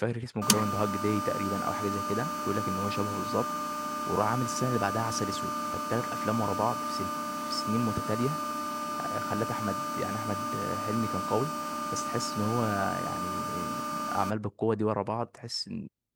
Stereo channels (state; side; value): identical; both; correlation 1.00